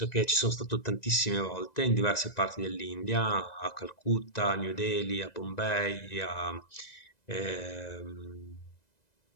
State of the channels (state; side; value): late; right; 1.9 ms